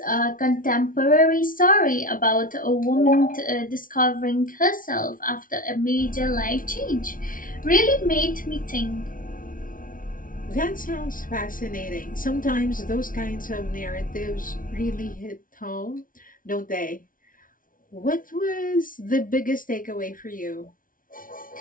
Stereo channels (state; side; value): late; right; 0.39 ms